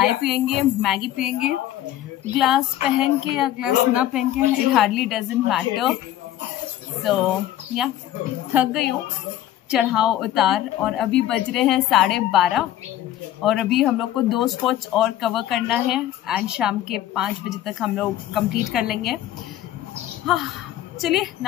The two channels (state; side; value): quieter; right; 13.0 dB